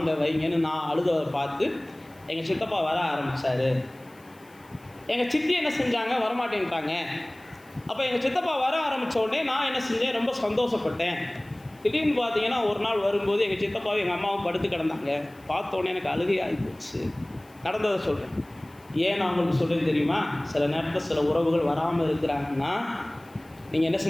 வைங்கன்னு நான் அழுதவரை பார்த்து எங்கள் சித்தப்பா வர ஆரம்பித்தார். எங்கள் சித்தி என்ன செஞ்சாங்க, வரமாட்டேன்ட்டாங்க. அப்போ எங்கள் சித்தப்பா வர ஆரம்பித்த உடனே நான் என்ன செஞ்சேன், ரொம்ப சந்தோஷப்பட்டேன். திடீர்னு பார்த்தீங்கன்னா ஒரு நாள் வரும்போது எங்கள் சித்தப்பாவும் எங்கள் அம்மாவும் படுத்து கிடந்தாங்க. பார்த்த உடனே எனக்கு அழுகை ஆகி போச்சு. நடந்ததை சொல்கிறேன். ஏன் நான் உங்களுக்கு சொல்கிறேன் தெரியுமா, சில நேரத்தில் சில உறவுகள் வராமல் இருக்கிறாங்கன்னா நீங்கள் என்ன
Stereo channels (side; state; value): left; noise; hiss, 29 dB below the sound